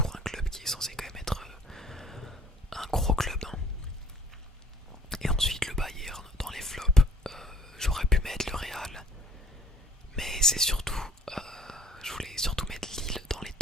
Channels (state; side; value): normal; both; correlation 0.55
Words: un club qui est censé quand même être un gros club, hein. Et ensuite le Bayern dans les flops, j'aurais pu mettre le Real. Mais c'est surtout, je voulais surtout mettre Lille dans les